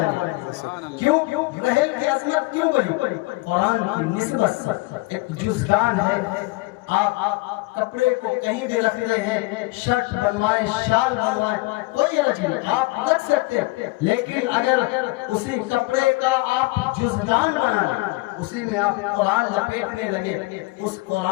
گئی۔ کیوں؟ رحل کی عظمت کیوں بڑھی؟ قرآن کی نسبت سے۔ ایک جزدان ہے، آپ کپڑے کو کہیں بھی رکھتے ہیں، شرٹ بنوائیں، شال بنوائیں، کوئی حرج نہیں، آپ رکھ سکتے ہیں، لیکن اگر اسی کپڑے کا آپ جزدان بنا لیں، اسی میں آپ قرآن لپیٹنے لگے، اس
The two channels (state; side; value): quieter; right; 23.2 dB